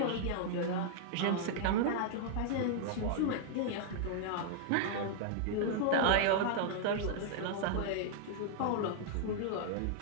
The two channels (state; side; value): different; both; correlation -0.01